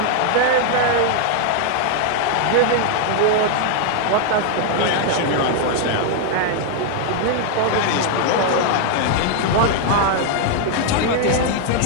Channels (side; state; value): both; different; correlation 0.00